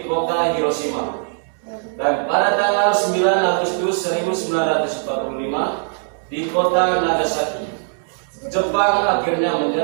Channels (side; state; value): left; silent; 66 dB below the other